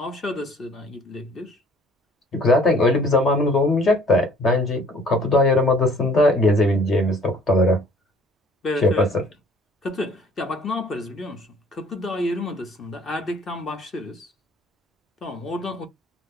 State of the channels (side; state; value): both; normal; correlation 0.55